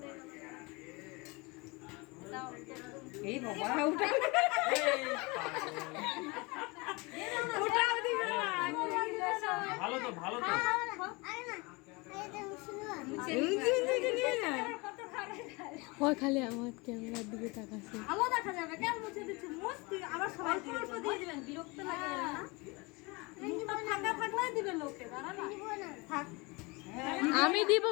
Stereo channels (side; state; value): right; quieter; 26.4 dB